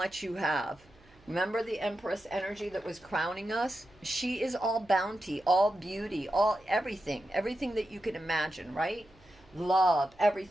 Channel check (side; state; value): right; noise; hum, 28 dB below the sound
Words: you have. Remember the Empress energy that was crowning us? She is all bounty, all beauty, all everything that you can imagine, right? Love,